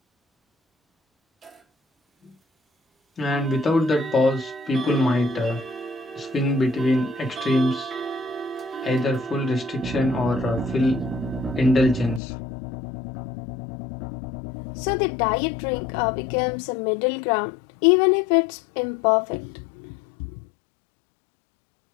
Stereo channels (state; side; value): drops out; right; at 12.2 s